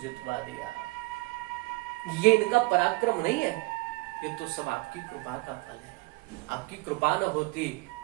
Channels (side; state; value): left; quieter; 25.3 dB